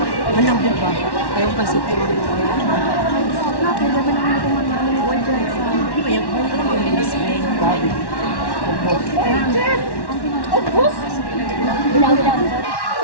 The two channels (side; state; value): right; late; 1.1 ms